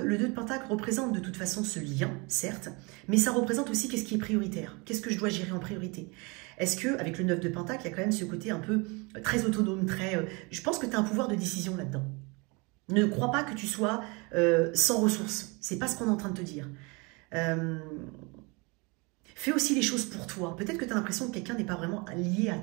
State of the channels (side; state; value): left; quieter; 28.5 dB